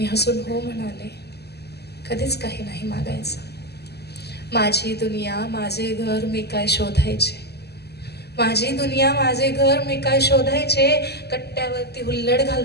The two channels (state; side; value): late; right; 0.47 ms